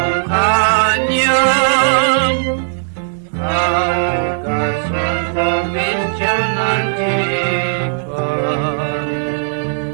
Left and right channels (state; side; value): silent; left; digital silence